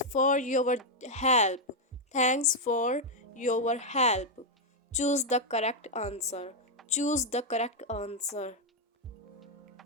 for your help. Thanks for your help. Choose the correct answer. Choose the correct answer.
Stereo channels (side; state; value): both; normal; correlation 0.00